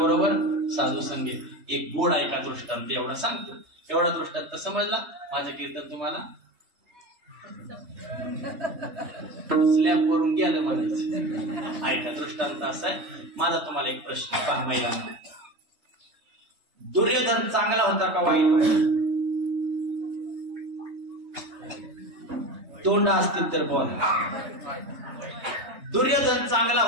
साधू संगे. एक गोड ऐका दृष्टांत एवढा सांगतो. एवढा दृष्टांत समजला? माझं कीर्तन तुम्हाला स्लॅब वरून गेलं म्हणायचं. ऐका दृष्टांत असा आहे. माझा तुम्हाला एक प्रश्न पहा महिलांना. दुर्योधन चांगला होता का वाईट? तोंड असतील तर बोला. दुर्योधन चांगला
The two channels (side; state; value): left; late; 3.3 ms